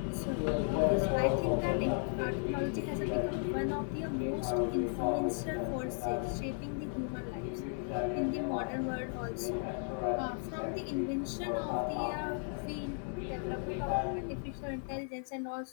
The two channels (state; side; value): silent; right; 54 dB below the other